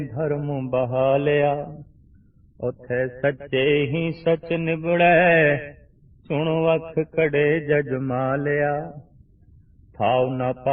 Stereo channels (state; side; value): identical; both; correlation 1.00